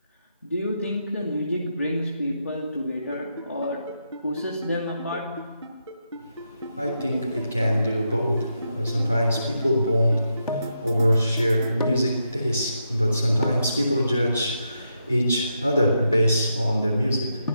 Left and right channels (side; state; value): both; inverted; correlation -0.83